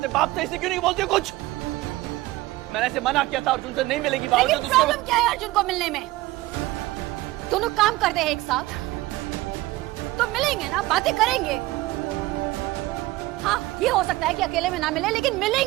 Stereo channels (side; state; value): left; quieter; 18.6 dB